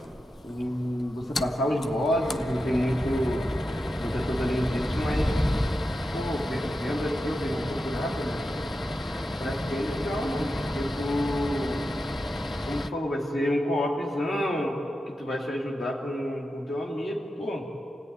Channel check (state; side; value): normal; both; correlation 0.90